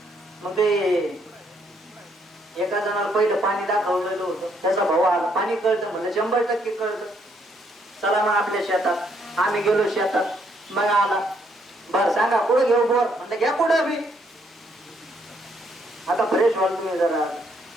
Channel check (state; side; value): normal; both; correlation 0.71